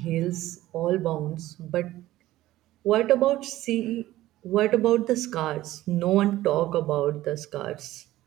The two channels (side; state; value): left; quieter; 15.5 dB